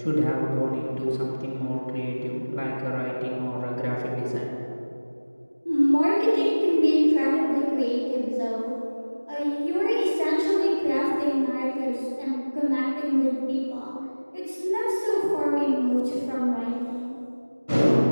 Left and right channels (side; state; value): both; inverted; correlation -1.00